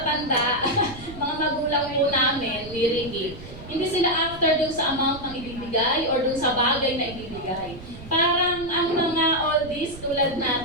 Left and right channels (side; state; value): right; noise; rumble, 15 dB below the sound